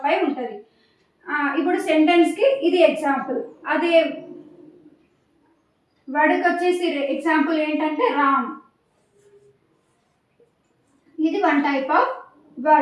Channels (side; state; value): both; identical; correlation 1.00